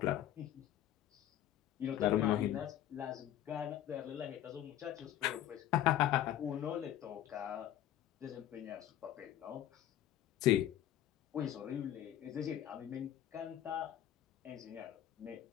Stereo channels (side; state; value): right; quieter; 11.9 dB